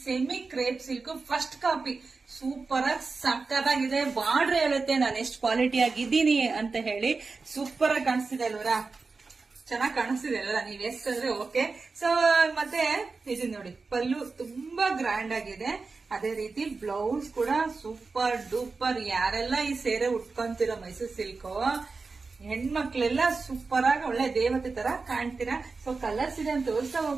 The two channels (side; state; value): left; quieter; 4.2 dB